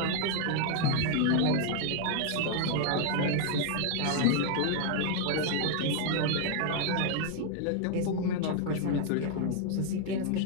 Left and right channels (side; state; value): both; different; correlation 0.00